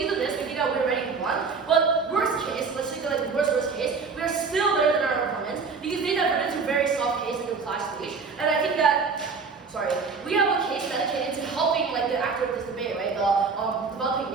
of this, we think that we're ready to run. But worst case, let's take like the worst case, we are still better than our opponents because they diverted to very soft case in the class stage. And I think that we have a case dedicated to helping like the actor of this debate, right? The developing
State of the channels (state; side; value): quieter; left; 4.9 dB